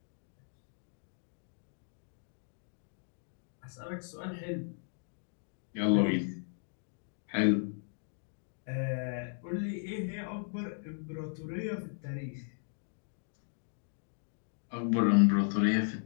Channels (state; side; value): silent; right; digital silence